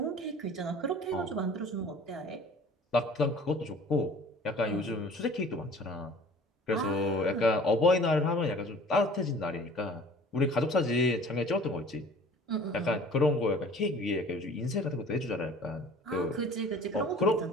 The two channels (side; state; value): both; normal; correlation 0.48